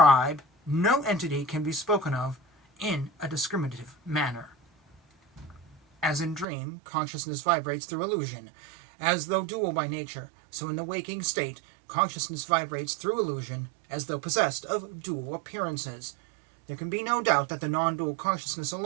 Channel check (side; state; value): left; drops out; at 6.5 s